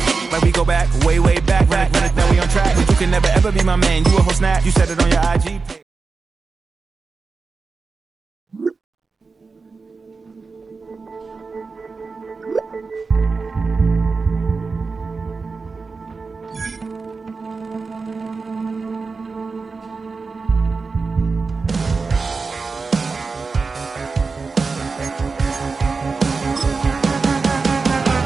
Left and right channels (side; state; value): left; quieter; 4.4 dB